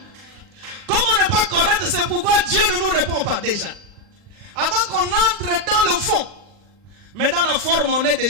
Comme on n'est pas correct, c'est pourquoi Dieu ne nous répond pas déjà. Avant qu'on entre dans le fond. Mais dans la forme, on est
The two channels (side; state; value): left; late; 39 ms